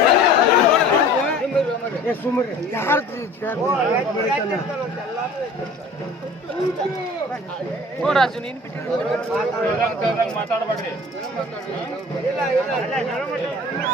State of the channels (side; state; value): both; normal; correlation 0.46